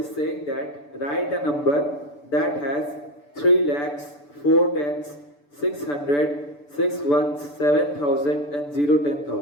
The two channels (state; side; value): late; right; 6.9 ms